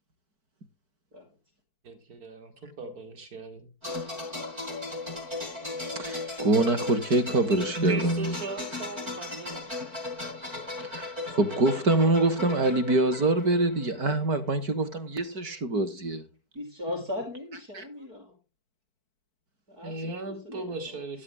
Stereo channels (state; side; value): late; left; 4.5 ms